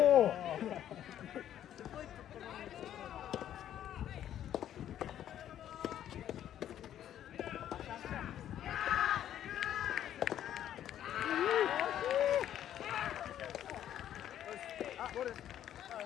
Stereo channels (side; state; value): right; quieter; 11.0 dB